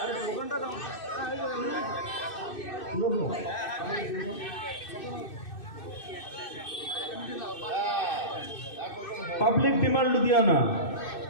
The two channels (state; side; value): late; right; 2.6 ms